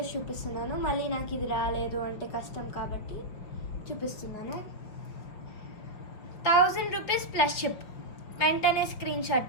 చూపిస్తున్నాను. మళ్ళీ నాకు ఇది రాలేదు అంటే కష్టం కాబట్టి చూపిస్తున్నాను. 1000 రూపీస్ ప్లస్ షిప్. వెంటనే స్క్రీన్ షాట్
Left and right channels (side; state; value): right; late; 5.2 ms